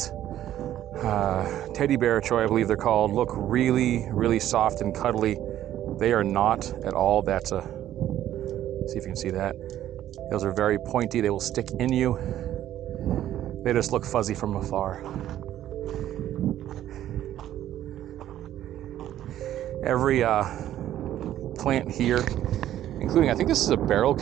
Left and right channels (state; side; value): quieter; left; 12.3 dB